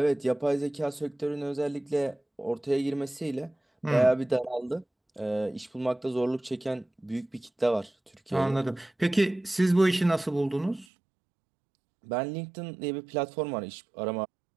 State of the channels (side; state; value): left; drops out; at 10.9 s